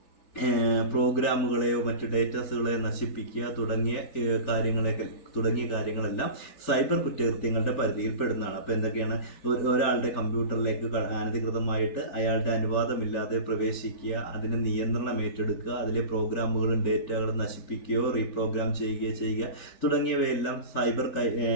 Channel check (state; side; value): late; right; 3.4 ms